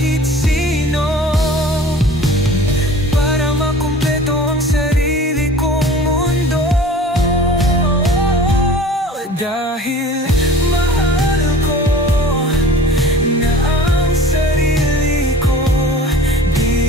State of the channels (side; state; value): both; normal; correlation 0.43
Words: sino para makumpleto ang sarili kong mundo. Dahil mahal ko na ang sarili ko,